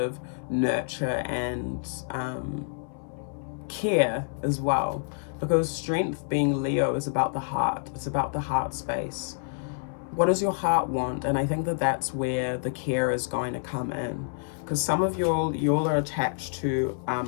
nurture and care as well, because strength, being Leo, is about the heart. It's about the heart space. What does your heart want? And I think that that's where the care is going to come in, because some of y'all are attached to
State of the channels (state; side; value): silent; right; 59 dB below the other